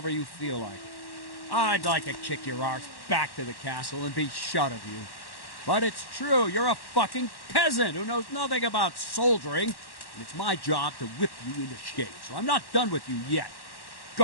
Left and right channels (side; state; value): right; late; 1.1 ms